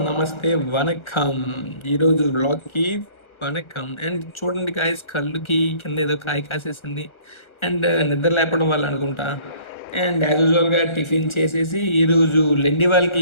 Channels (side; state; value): right; late; 1.4 ms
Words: నమస్తే, వనక్కం. ఈరోజు వ్లాగ్కి vanakkam. And చూడండి గాయస్, కళ్ళుకి కింద ఏదో కాయ కాసేసింది. అండ్ నిద్ర లేపడం వల్ల అనుకుంటా. అండ్ యాజ్ యూజువల్గా టిఫిన్ చేసేసి ఈరోజు లెండి